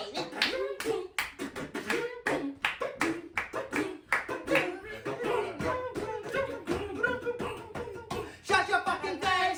it? Shut your fucking face,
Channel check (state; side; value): identical; both; correlation 1.00